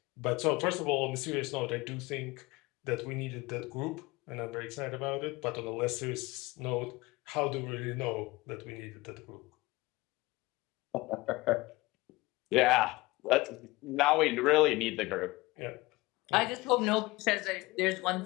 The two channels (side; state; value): right; quieter; 21.3 dB